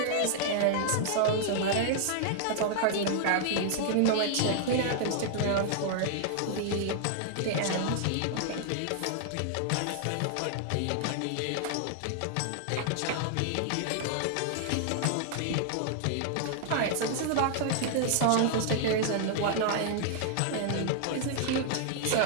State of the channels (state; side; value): different; both; correlation -0.01